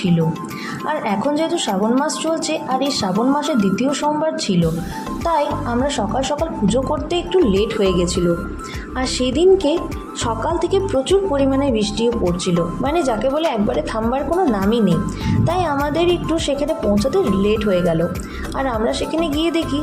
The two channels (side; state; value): both; identical; correlation 1.00